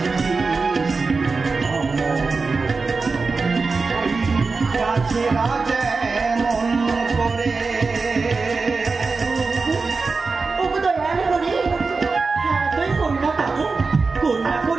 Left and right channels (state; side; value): quieter; left; 4.2 dB